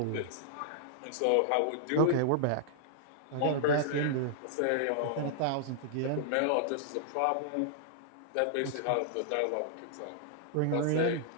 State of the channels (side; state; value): both; different; correlation -0.01